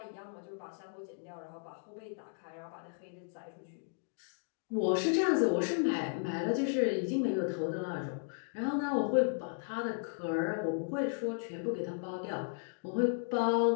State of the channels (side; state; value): right; silent; digital silence